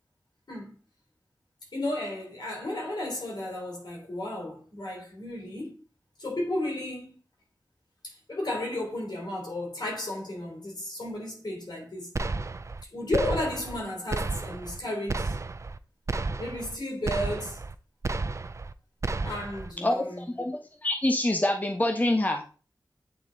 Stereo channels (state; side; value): normal; both; correlation 0.77